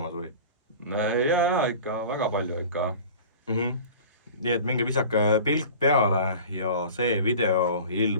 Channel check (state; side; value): inverted; both; correlation -0.39